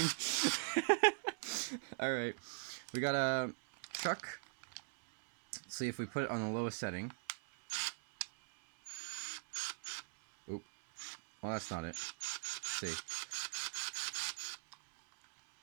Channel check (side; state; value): left; silent; digital silence